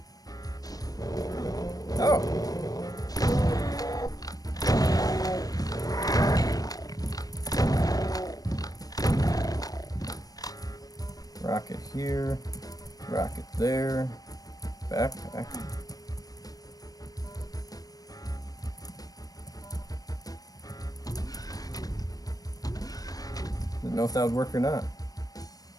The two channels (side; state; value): right; late; 0.18 ms